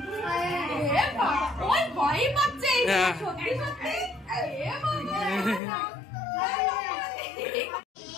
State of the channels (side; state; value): right; drops out; at 5.6 s